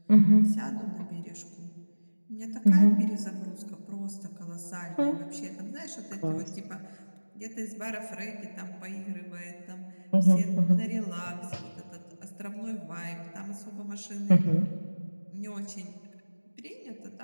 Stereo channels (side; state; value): both; inverted; correlation -1.00